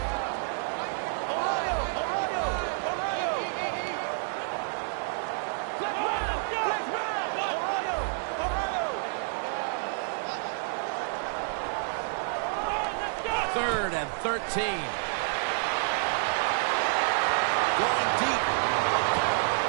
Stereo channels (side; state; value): left; silent; digital silence